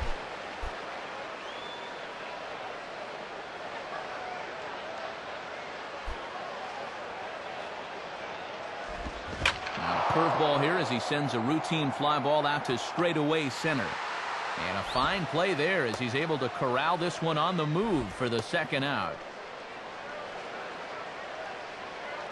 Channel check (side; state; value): both; identical; correlation 1.00